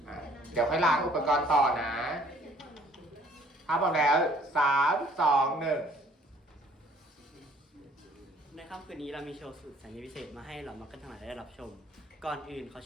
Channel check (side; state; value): both; normal; correlation 0.58